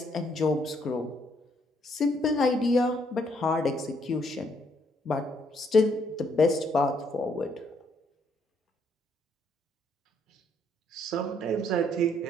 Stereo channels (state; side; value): normal; both; correlation 0.70